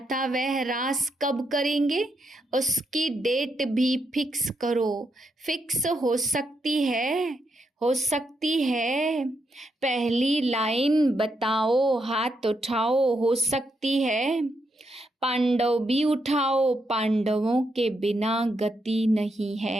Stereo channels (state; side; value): normal; both; correlation 0.80